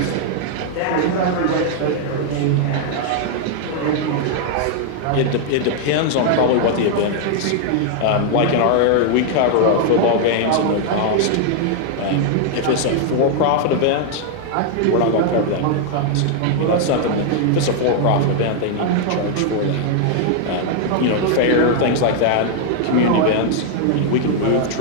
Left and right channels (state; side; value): different; both; correlation 0.00